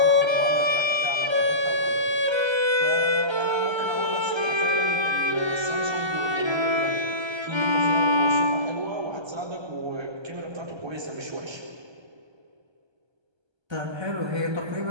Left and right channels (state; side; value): late; left; 1.3 ms